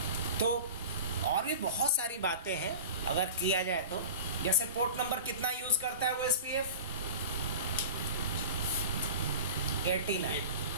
तो और भी बहुत सारी बातें हैं अगर किया जाए तो, जैसे पोर्ट नंबर कितना यूज करता है OSPF? 89।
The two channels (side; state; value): both; inverted; correlation -0.35